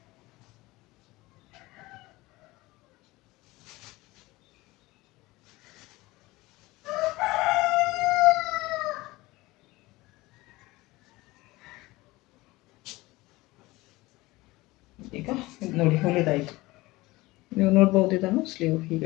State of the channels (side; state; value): right; quieter; 20.3 dB